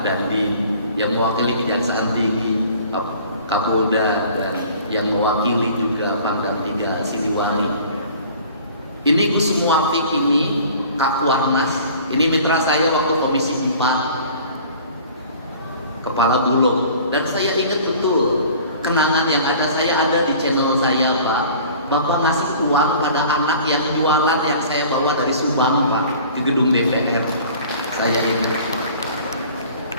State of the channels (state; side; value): inverted; both; correlation -0.47